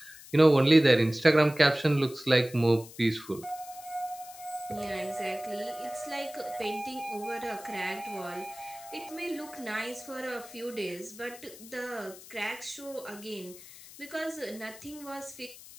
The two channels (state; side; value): noise; left; hiss, 18 dB below the sound